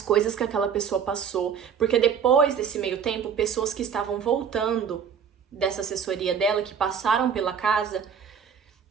que aquela pessoa passou. Porque depois desse meio tempo, pessoas que estavam voltando dessa assessoria dela, que passaram pela casa,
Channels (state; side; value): quieter; left; 7.2 dB